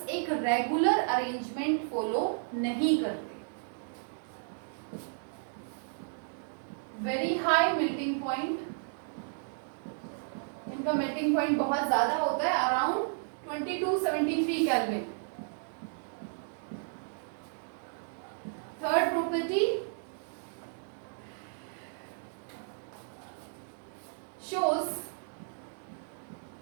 एक रेगुलर अरेंजमेंट फॉलो नहीं करते। वेरी हाई मेल्टिंग पॉइंट, इनका मेल्टिंग पॉइंट बहुत ज्यादा होता है, अराउंड 2273 kelvin. Third property, shows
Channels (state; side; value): silent; left; digital silence